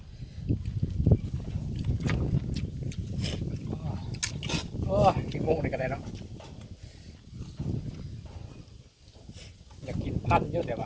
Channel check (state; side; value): identical; both; correlation 1.00